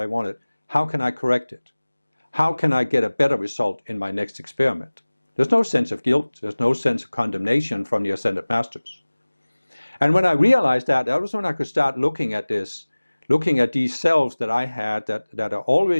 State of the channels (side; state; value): both; inverted; correlation -1.00